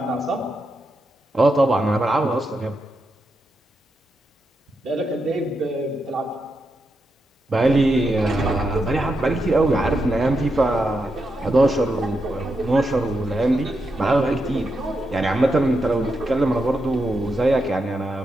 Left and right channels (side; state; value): both; normal; correlation 0.85